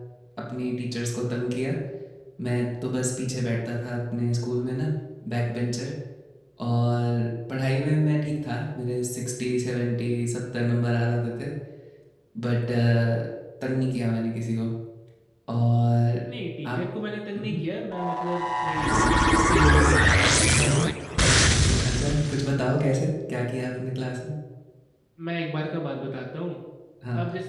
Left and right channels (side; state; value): both; identical; correlation 1.00